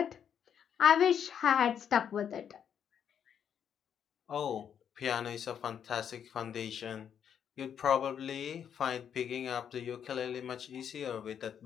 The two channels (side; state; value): right; quieter; 8.4 dB